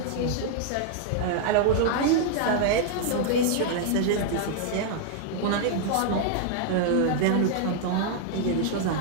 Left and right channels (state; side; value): different; both; correlation -0.01